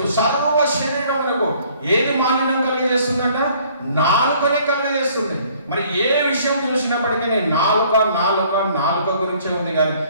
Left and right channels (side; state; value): both; inverted; correlation -0.59